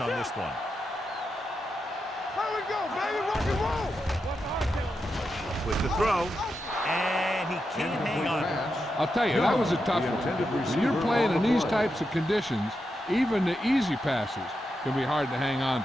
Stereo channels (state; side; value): normal; both; correlation 0.87